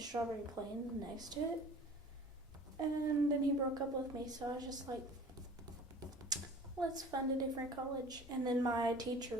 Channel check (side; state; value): both; normal; correlation 0.45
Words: Plains next to it. And then he broke up with me, so I was just like, let's find a different college. And then my